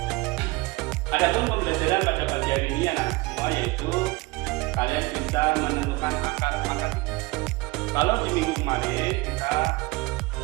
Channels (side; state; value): left; quieter; 22.8 dB